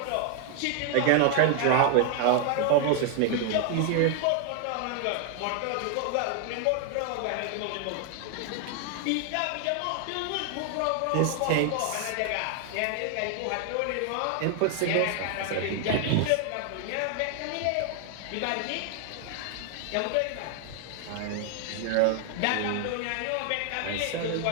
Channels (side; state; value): both; different; correlation 0.00